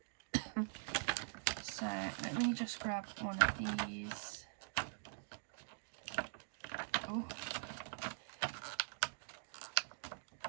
So let me just grab one of these. Oh.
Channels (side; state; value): left; silent; digital silence